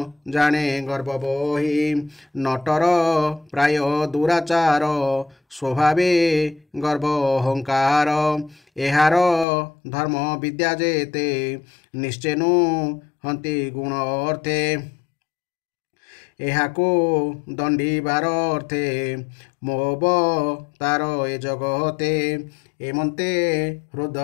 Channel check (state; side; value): drops out; right; at 9.5 s